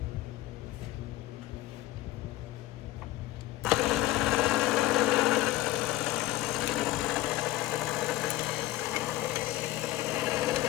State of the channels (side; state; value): right; quieter; 16.2 dB